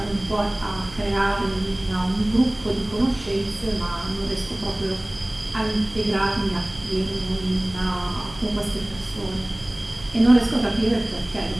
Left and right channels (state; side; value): noise; right; hum, 19 dB below the sound